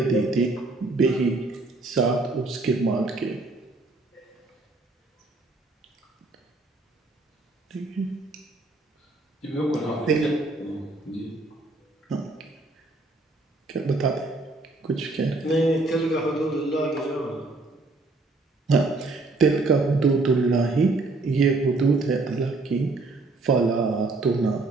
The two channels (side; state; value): left; quieter; 3.3 dB